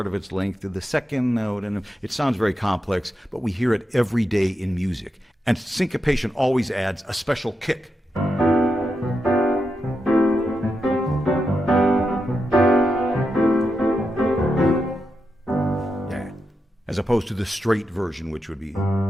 of its length to the second note, and it sounds very complex, but we hear it every day in music. And syncopation always adds a special kick. Yeah. As opposed to the straight version, which would be...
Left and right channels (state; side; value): normal; both; correlation 0.86